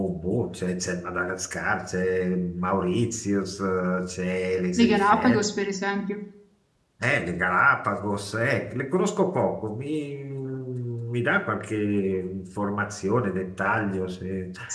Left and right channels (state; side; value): identical; both; correlation 1.00